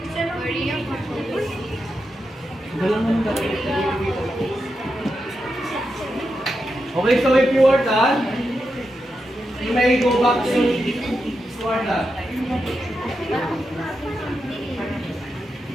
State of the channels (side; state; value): both; normal; correlation 0.87